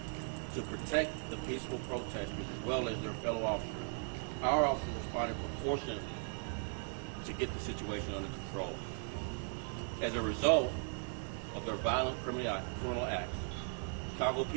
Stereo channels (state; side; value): silent; left; 52 dB below the other